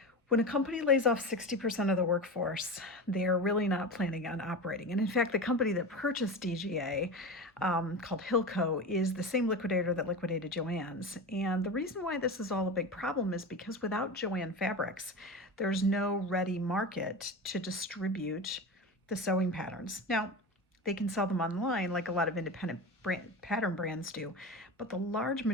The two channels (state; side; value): normal; both; correlation 0.26